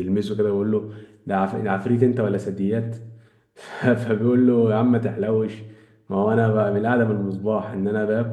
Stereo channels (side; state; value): both; identical; correlation 1.00